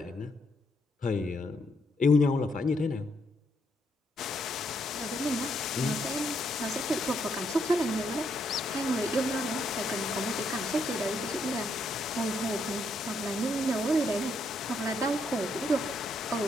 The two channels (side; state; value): both; normal; correlation 0.76